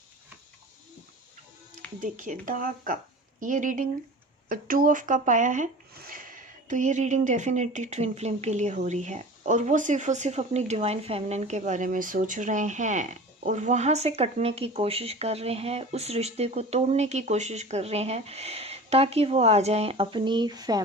देखिए, द कप, ये रीडिंग 2 ऑफ कप आया है। तो ये रीडिंग डेफिनेटली ट्विन फ्लेम के लिए हो रही है, और वो सिर्फ अपनी डिवाइन फेमिनिन के बारे में सोच रहे हैं और वहाँ से कटने की कोशिश कर रहे हैं, उस रिश्ते को तोड़ने की कोशिश कर रहे हैं ताकि वो आ जाएं अपनी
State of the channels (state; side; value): normal; both; correlation 0.37